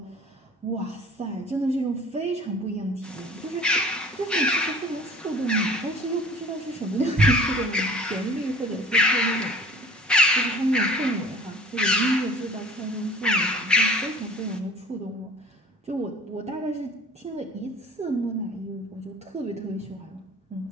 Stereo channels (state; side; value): normal; both; correlation 0.47